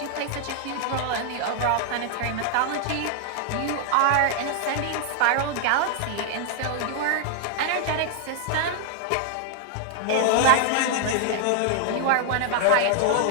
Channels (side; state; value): both; different; correlation 0.00